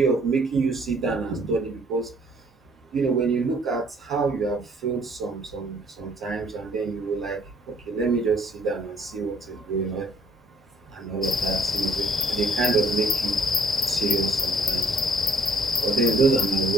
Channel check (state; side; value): normal; both; correlation 0.62